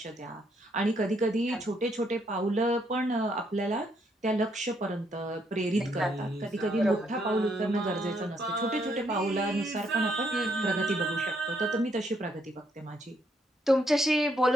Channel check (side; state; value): both; normal; correlation 0.74